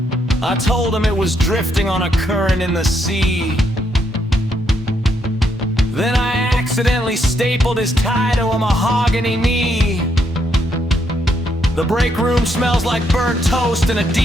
I told him it was drifting on a current in the sea. Then I accidentally stapled his tie to a mahogany knee. The break room smells like burnt toast in a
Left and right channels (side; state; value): both; normal; correlation 0.75